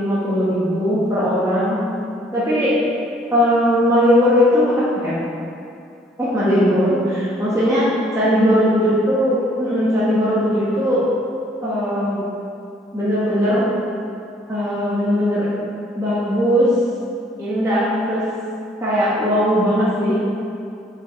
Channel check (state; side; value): normal; both; correlation 0.61